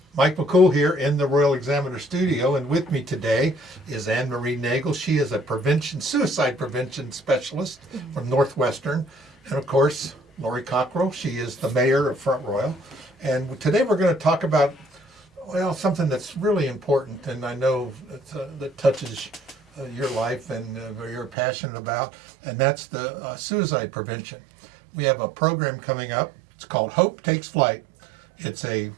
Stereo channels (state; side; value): drops out; left; at 21.4 s